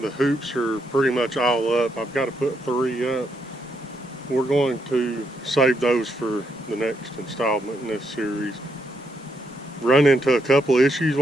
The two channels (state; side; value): normal; both; correlation 0.78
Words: hoops are pretty much all up. I've got to put 3 up. We're going to save those for the next installment in this series. Run into a couple issues